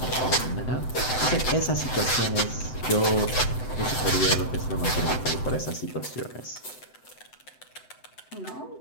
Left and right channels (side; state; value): right; late; 7.9 ms